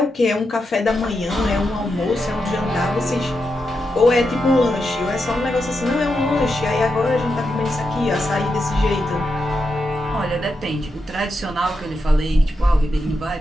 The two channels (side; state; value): both; normal; correlation 0.86